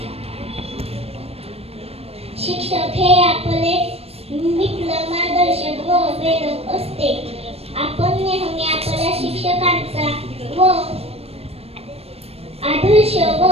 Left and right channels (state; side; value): late; left; 0.29 ms